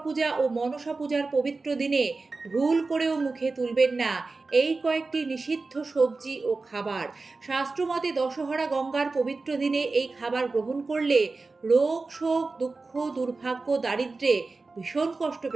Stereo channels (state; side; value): quieter; left; 3.8 dB